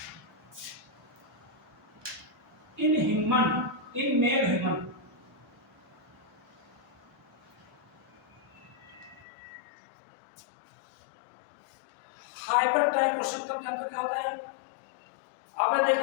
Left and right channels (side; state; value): right; drops out; at 9.2 s